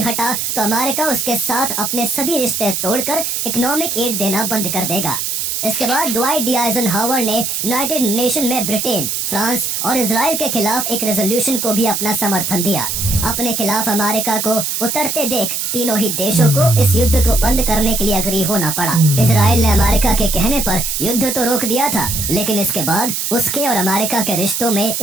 हटा तो अमेरिका उसके साथ अपने सभी रिश्ते तोड़कर इकोनॉमिक एड देना बंद कर देगा। इसके बाद ड्वाइट डी आइजनहावर ने यूनाइटेड नेशन में ब्रिटेन, फ्रांस और इजराइल के खिलाफ एक रेजोल्यूशन को भी अपना समर्थन दिया। अपने खिलाफ अमेरिका को उतरते देख तीनों ही देशों को इस युद्ध को बंद करने के लिए अग्री होना पड़ा। इजराइल ने अमेरिका के कहने पर युद्ध तो रोक दिया था, लेकिन इसके बाद उसके और अमेरिका के रिश्तों में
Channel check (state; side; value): noise; right; hiss, 2 dB below the sound